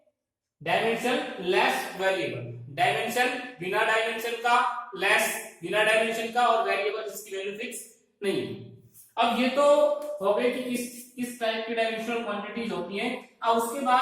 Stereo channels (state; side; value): identical; both; correlation 1.00